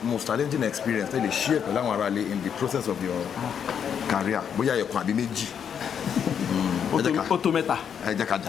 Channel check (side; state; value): right; quieter; 7.9 dB